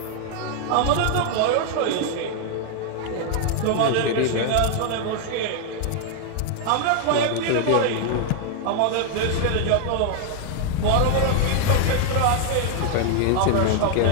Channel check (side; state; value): both; different; correlation 0.00